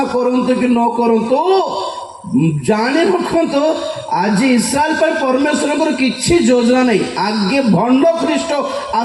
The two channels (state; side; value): identical; both; correlation 1.00